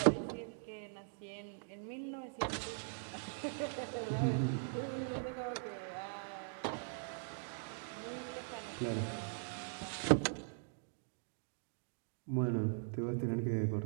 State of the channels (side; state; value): left; silent; digital silence